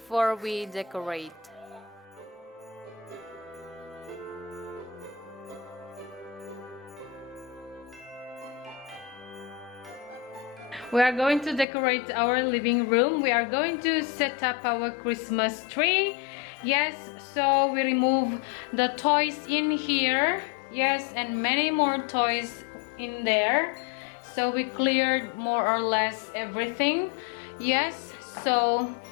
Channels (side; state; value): right; drops out; at 11.7 s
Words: we decorate. We are going to decorate our living room. We are going to set up our Christmas tree. Yes, so we remove the toys in here. Yes, and many more toys in there. So we cleared more or less everything. Yes, so